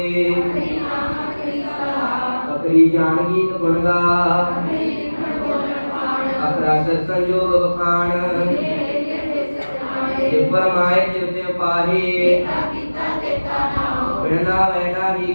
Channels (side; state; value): both; inverted; correlation -1.00